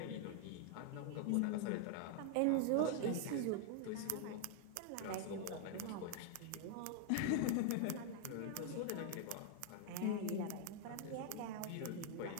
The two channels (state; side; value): different; both; correlation 0.00